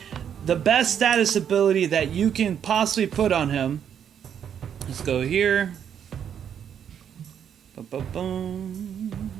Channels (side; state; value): left; quieter; 8.6 dB